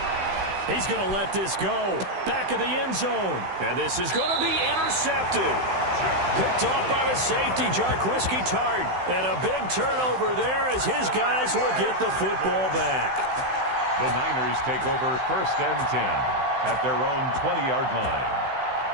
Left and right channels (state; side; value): late; left; 16 ms